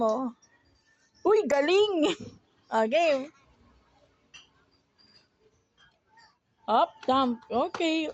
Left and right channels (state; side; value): identical; both; correlation 1.00